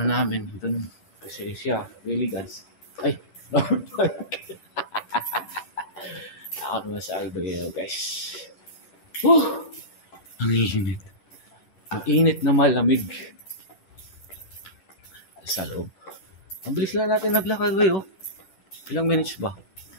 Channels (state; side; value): late; right; 10 ms